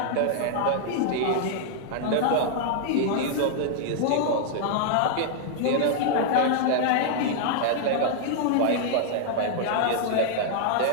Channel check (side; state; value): both; different; correlation -0.01